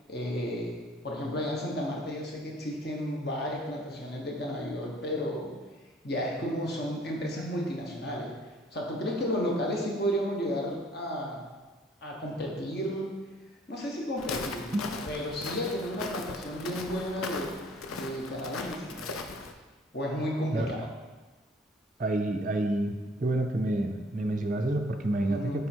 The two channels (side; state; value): both; normal; correlation 0.58